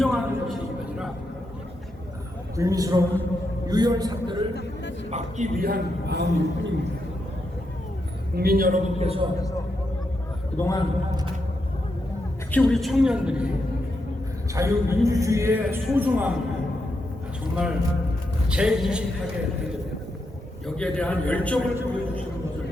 것이 아니라 불미스러운 유혈 사태를 막기 위한 마음일 뿐입니다. 국민 여러분께서 그동안 특히 우리 청년들이 자유민주주의의 소중함을 정말 재인식하게 되고 여기에 대한 열정을 보여주시는 것을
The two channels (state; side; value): normal; both; correlation 0.83